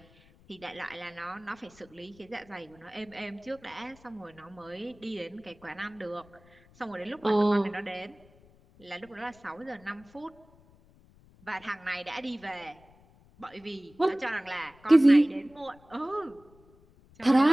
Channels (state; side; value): noise; left; rumble, 27 dB below the sound